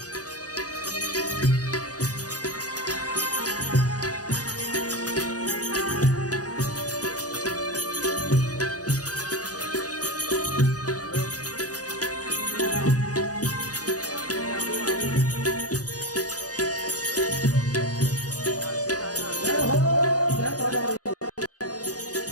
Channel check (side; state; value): right; late; 0.68 ms